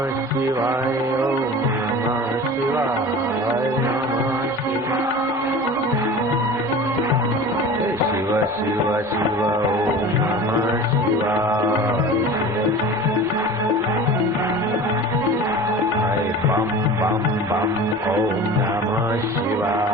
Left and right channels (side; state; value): both; normal; correlation 0.37